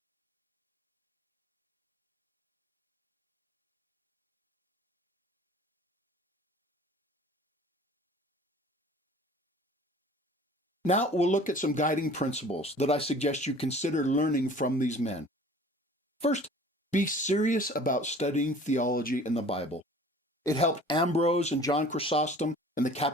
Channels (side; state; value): both; normal; correlation 0.47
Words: Now we'll look at some guiding principles that I suggest you consider learning from these men. First, be serious about studying theology in the Bible. It helped Ambrose and John Chrysostom and the